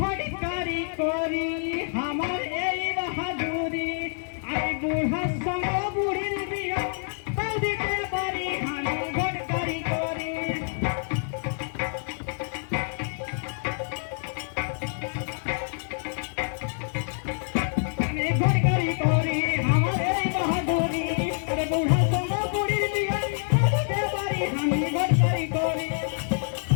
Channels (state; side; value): silent; right; 60 dB below the other